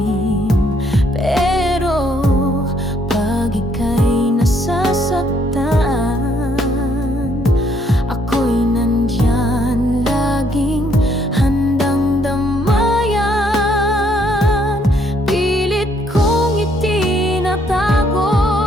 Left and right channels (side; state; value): both; normal; correlation 0.69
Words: Pero pag ika'y nasasaktan, ako'y nandyan, laging handang damayan. Pilit kong itinatago